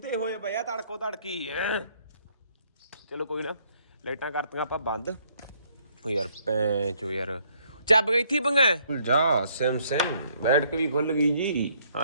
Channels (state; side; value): inverted; both; correlation -0.67